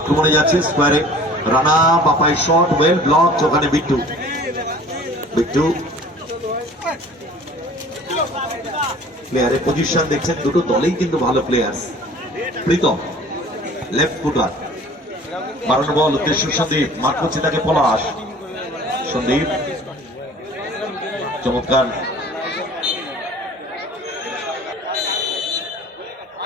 যাচ্ছে স্কোয়ারে, রানা বাপাই শট ওয়েল ব্লক, ওখানে বিট্টু, বিট্টু প্লেয়ারের পজিশন দেখছেন, দুটো দলেই কিন্তু ভালো প্লেয়ার। প্রীতম লেফট ফুটার, বাড়ানো বল উদ্দেশ্য সন্দীপ, মার করছে তাকে পলাশ, সন্দীপ চমৎকার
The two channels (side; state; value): both; normal; correlation 0.47